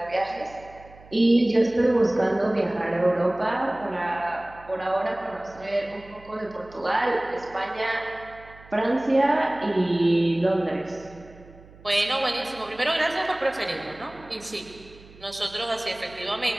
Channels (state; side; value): noise; right; hum, 22 dB below the sound